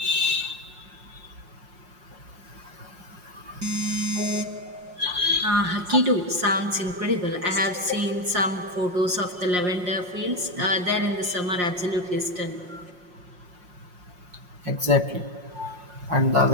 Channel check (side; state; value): left; late; 5.6 ms